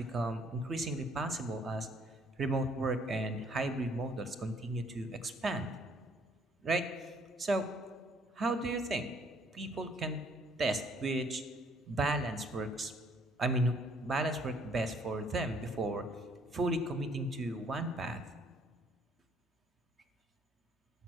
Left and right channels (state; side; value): normal; both; correlation 0.63